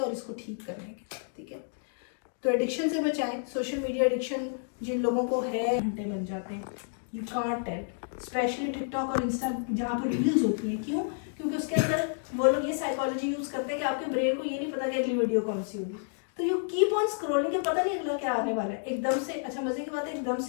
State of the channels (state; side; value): silent; right; digital silence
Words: इसको ठीक करने के, ठीक है। तो एडिक्शन से बचाएं। सोशल मीडिया एडिक्शन जिन लोगों को है, घंटे बन जाते हैं, you can't tell, specially TikTok और इंस्टा जहाँ पर रील्स होती हैं। क्यों? क्योंकि उसके अंदर वो लोग ये साइकोलॉजी यूज़ करते हैं कि आपके ब्रेन को ये नहीं पता कि अगली वीडियो कौन सी होगी, तो यू कीप ऑन स्क्रॉलिंग, के पता नहीं अगला क्या आने वाला है। एकदम से, अच्छा मजे की बात है, एकदम